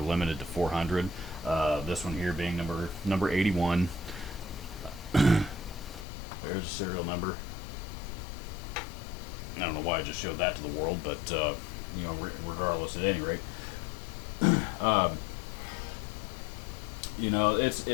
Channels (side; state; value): right; drops out; at 6.1 s